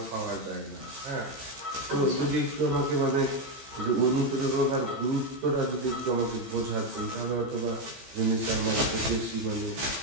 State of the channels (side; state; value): left; late; 15 ms